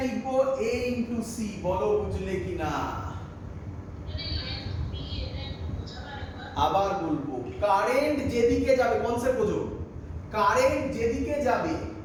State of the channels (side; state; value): both; identical; correlation 1.00